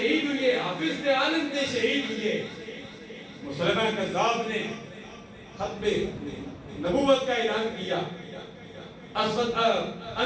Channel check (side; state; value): both; identical; correlation 1.00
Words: ہوئے، حافظ عالم نے شہید ہوئے، مسلمہ کذاب نے ختم نبوت کا اعلان کیا، اسود